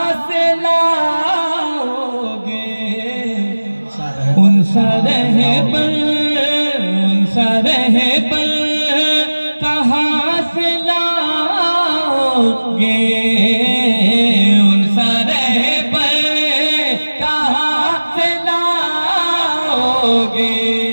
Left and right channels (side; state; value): both; inverted; correlation -1.00